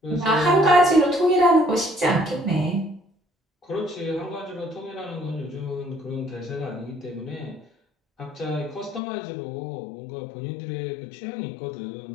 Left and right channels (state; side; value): drops out; right; at 9.0 s